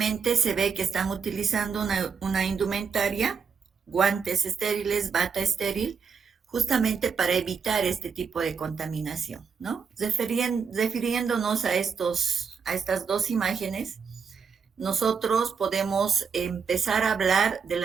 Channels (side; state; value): left; quieter; 6.0 dB